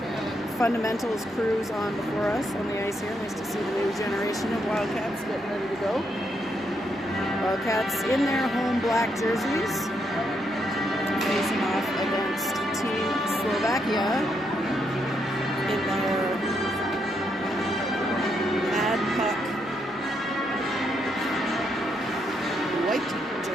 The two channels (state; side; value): normal; both; correlation 0.78